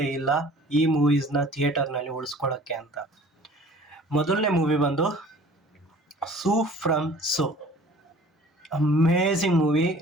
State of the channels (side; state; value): both; normal; correlation 0.48